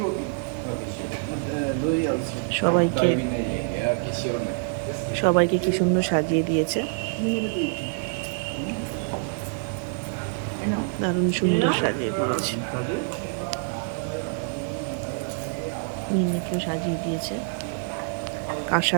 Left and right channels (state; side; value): silent; left; digital silence